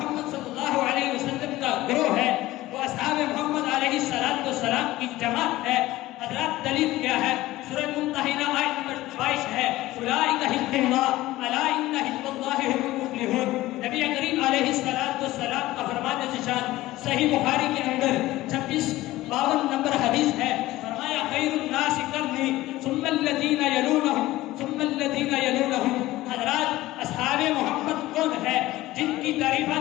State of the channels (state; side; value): quieter; right; 17.1 dB